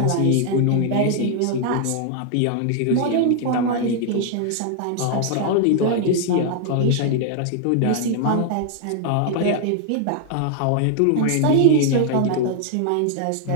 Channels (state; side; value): different; both; correlation 0.00